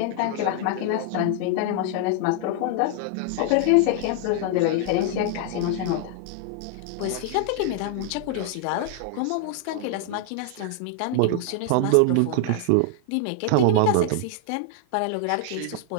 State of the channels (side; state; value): both; different; correlation 0.00